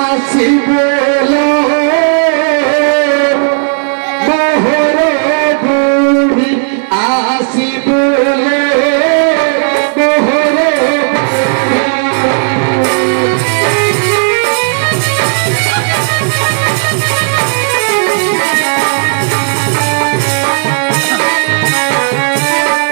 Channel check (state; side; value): silent; left; digital silence